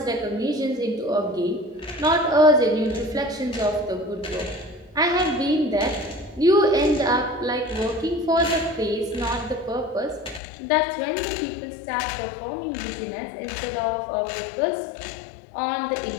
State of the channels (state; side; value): drops out; right; at 10.4 s